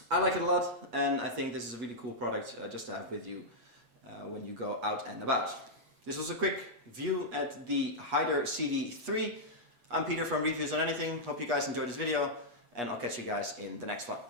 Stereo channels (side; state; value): left; late; 8.3 ms